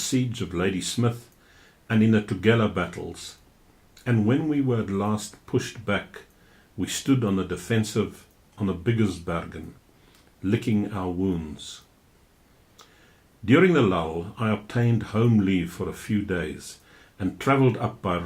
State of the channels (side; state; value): both; identical; correlation 1.00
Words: of Ladysmith and in the Tugela battles, and when we were at last pushed back, we stood on the defensive on the Biggersbergen, licking our wounds. During the lull, I obtained home leave for a few days and travelled up by